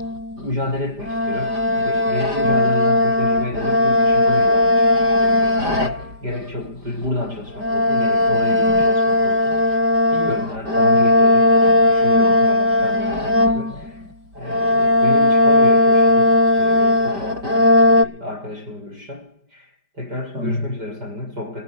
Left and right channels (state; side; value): late; left; 5.0 ms